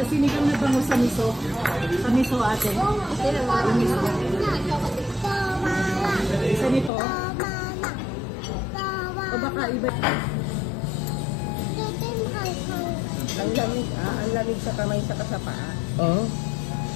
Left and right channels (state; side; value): drops out; right; at 6.9 s